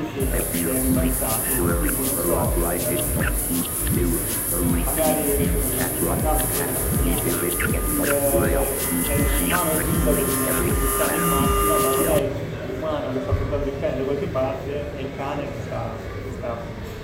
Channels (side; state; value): both; identical; correlation 1.00